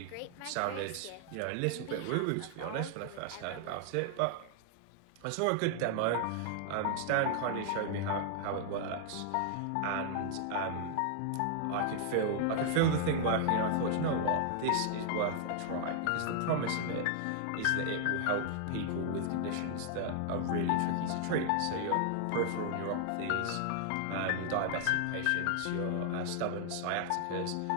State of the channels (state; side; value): different; both; correlation 0.00